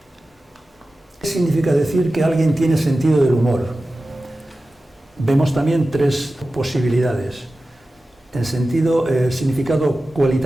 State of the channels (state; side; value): normal; both; correlation 0.95